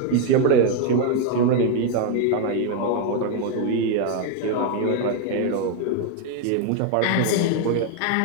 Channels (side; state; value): both; different; correlation 0.01